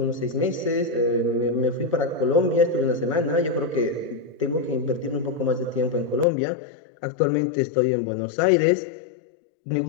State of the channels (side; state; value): right; drops out; at 6.2 s